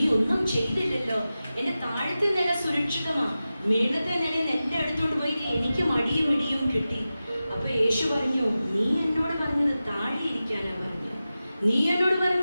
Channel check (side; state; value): both; inverted; correlation -0.94